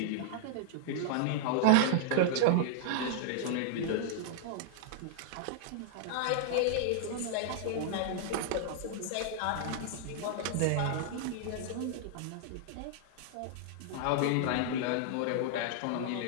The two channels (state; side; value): different; both; correlation -0.01